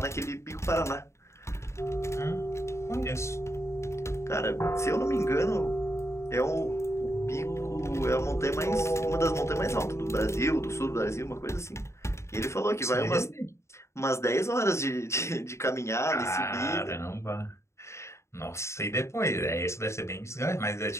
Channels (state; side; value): late; right; 0.14 ms